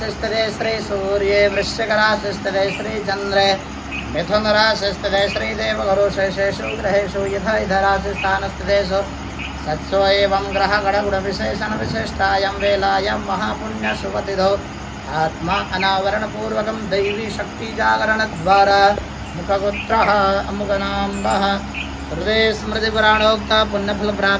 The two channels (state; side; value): identical; both; correlation 1.00